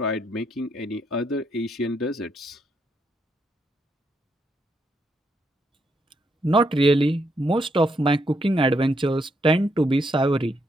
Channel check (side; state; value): both; normal; correlation 0.77